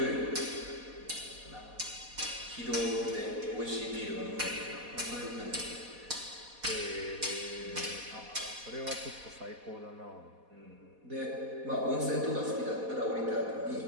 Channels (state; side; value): late; left; 4.1 ms